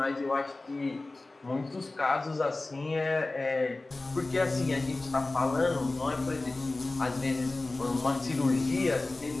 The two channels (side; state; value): right; quieter; 3.1 dB